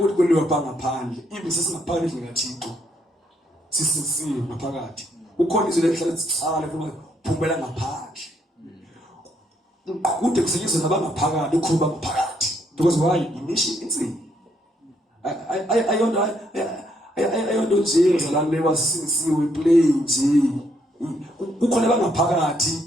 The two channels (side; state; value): both; normal; correlation 0.73